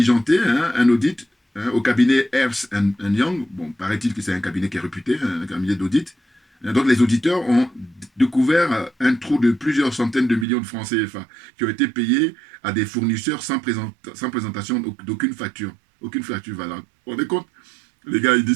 un audit au cabinet Ernst Young. Bon, paraît-il que c'est un cabinet qui est réputé, un cabinet d'audit. Donc, les auditeurs ont découvert un trou de plusieurs centaines de millions de francs CFA qui ont été payés à des fournisseurs sans présentation d'aucune facture. Aucune facture valable. Vous vous rendez compte? Les gars, ils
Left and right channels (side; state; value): left; drops out; at 10.5 s